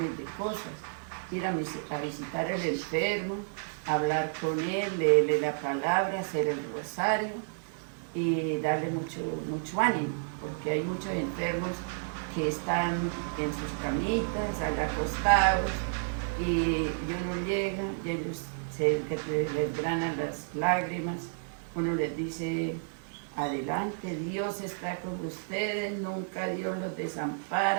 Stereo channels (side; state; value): left; silent; digital silence